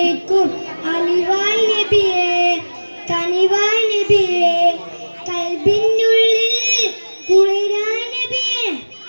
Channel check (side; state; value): both; inverted; correlation -1.00